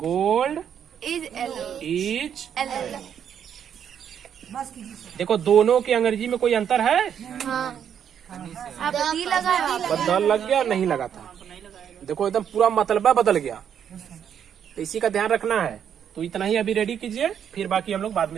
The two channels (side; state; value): left; quieter; 8.6 dB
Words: इज। देखो दोनों की अंग्रेजी में कोई अंतर है? आप दी लगा बस द लग गया, नहीं लगा था। देखो एकदम पूरा मतलबा बदल गया। तो इसी का ध्यान रखना है। तो इतना ही अभी रेडी कीजिए, फिर बाकी हम लोग बाद